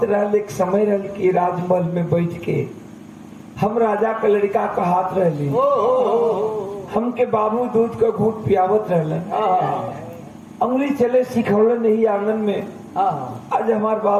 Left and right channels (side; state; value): both; identical; correlation 1.00